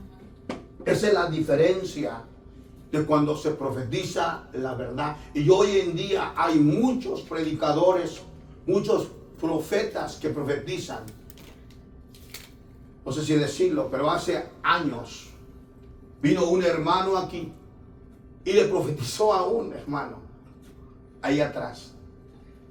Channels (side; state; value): both; identical; correlation 1.00